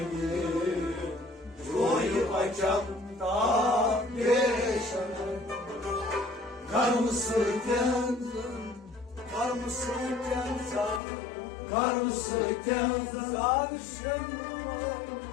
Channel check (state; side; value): drops out; right; at 11.0 s